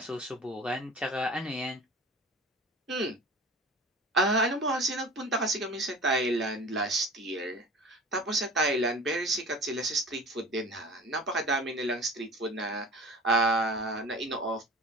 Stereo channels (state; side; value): normal; both; correlation 0.39